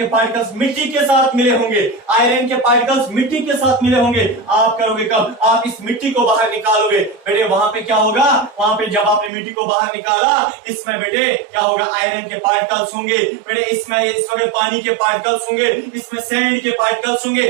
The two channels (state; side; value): drops out; left; at 9.3 s